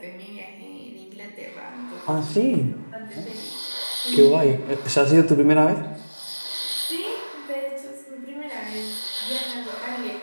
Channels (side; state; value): both; inverted; correlation -1.00